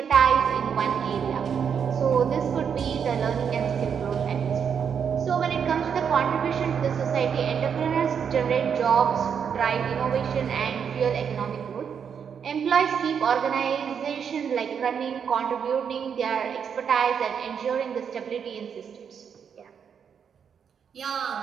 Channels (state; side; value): quieter; left; 7.3 dB